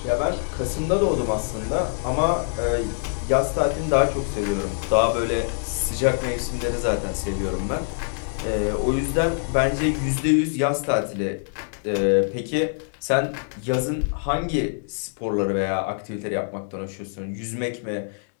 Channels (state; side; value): silent; right; digital silence